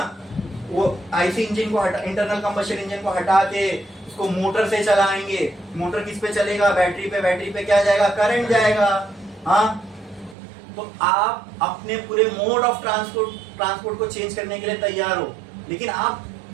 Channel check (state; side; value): drops out; left; at 10.4 s